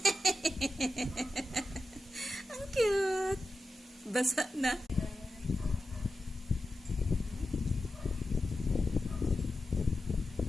Ang cute. Basa na.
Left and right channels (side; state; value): both; normal; correlation 0.91